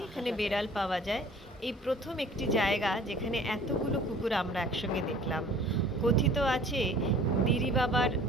এখানে বেড়াল পাওয়া যায়। এই প্রথম একটি জায়গা যেখানে এতগুলো কুকুর আমরা একসঙ্গে দেখলাম। কথিত আছে দিরি বাবার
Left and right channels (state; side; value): normal; both; correlation 0.49